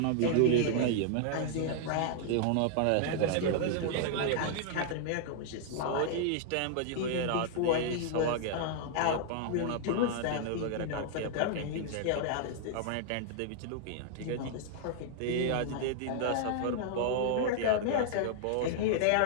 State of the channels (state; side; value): different; both; correlation -0.01